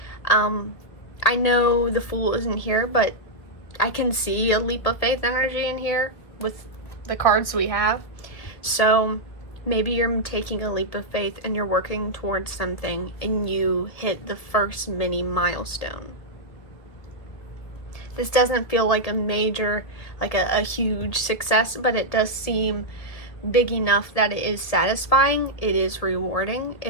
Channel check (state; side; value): late; right; 1.7 ms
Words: I know the Fool isn't here, but I can see a leap of faith energy in here with the cards we have. So maybe you're taking a leap of faith and you're working towards something and you hit the first mini milestone. This doesn't feel like a major, like a huge success, but it does seem big enough that it is satisfying, it is rewarding,